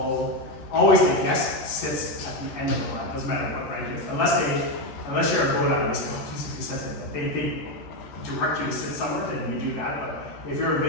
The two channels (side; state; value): right; late; 13 ms